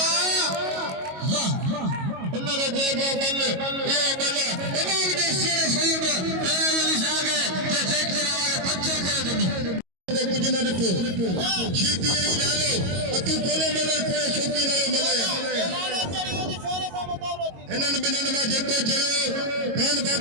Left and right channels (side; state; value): left; late; 22 ms